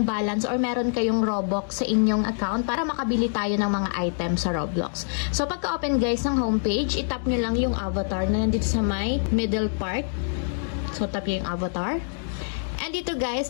balance or meron kayong Robux sa inyong account para makabili tayo ng mga items sa Roblox. So pagka-open guys ng homepage, itap nyo lang yung avatar na nandito sa may middle part. So tap nyo yung avatar. And dito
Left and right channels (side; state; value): right; silent; digital silence